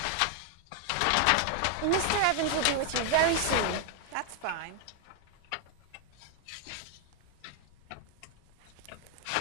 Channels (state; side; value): different; both; correlation 0.00